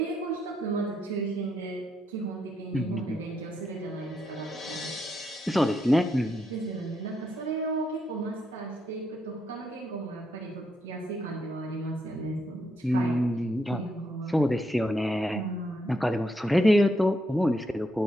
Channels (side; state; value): both; normal; correlation 0.79